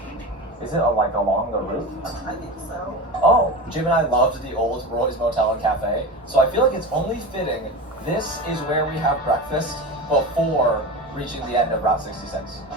Is it like along the route? I think so. Oh, Jim and I loved the old Roy's Motel and Cafe, so I feel like it's only fitting this is where we have breakfast before reaching the end of Route 66.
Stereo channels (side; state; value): both; normal; correlation 0.27